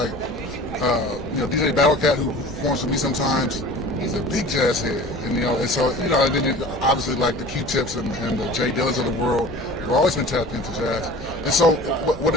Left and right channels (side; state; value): both; normal; correlation 0.41